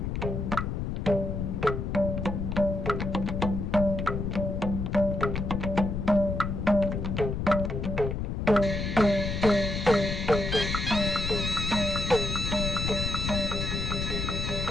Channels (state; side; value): noise; left; rumble, 2 dB below the sound